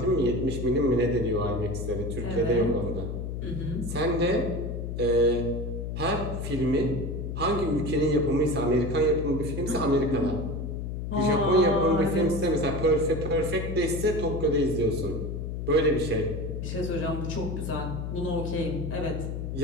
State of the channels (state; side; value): noise; left; hum, 5 dB below the sound